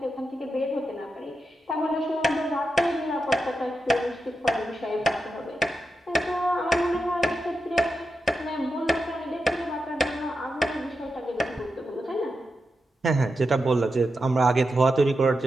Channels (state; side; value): normal; both; correlation 0.88